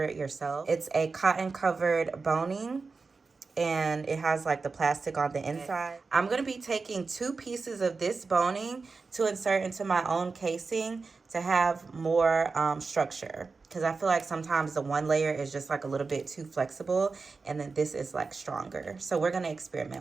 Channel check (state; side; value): quieter; left; 4.3 dB